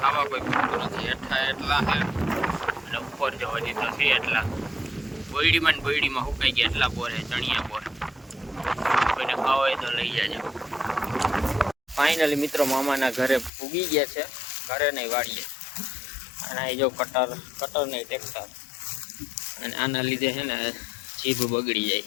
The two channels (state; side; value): drops out; right; at 13.5 s